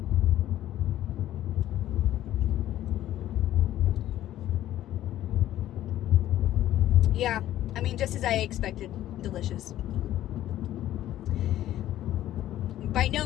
Yeah, I mean, just as I expected. Delicious. By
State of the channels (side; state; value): right; quieter; 13.2 dB